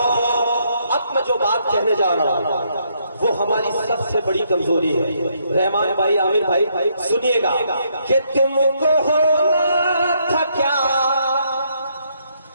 अब मैं जो बात कहने जा रहा हूँ वो हमारी सबसे बड़ी कमजोरी है। रहमान भाई, आमिर भाई, सुनिएगा कि तुमको होना था क्या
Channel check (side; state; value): both; inverted; correlation -0.73